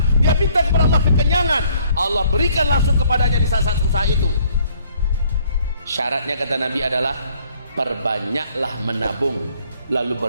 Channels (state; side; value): inverted; both; correlation -0.62